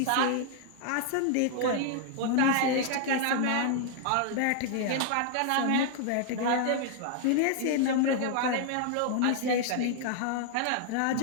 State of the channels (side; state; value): both; different; correlation 0.00